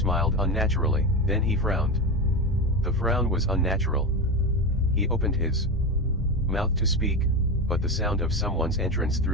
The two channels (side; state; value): both; normal; correlation 0.19